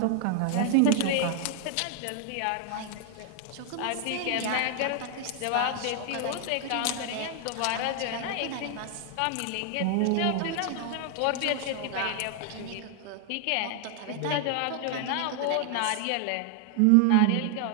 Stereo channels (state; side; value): different; both; correlation 0.00